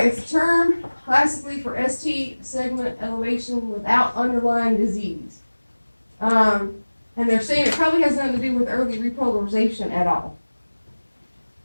it's a term classically for ST segment elevation without underlying disease. And they're saying it probably has nothing to do with early repolarization at all.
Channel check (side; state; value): both; inverted; correlation -1.00